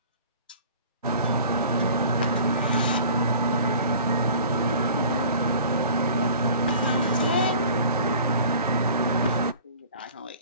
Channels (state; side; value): inverted; both; correlation -0.45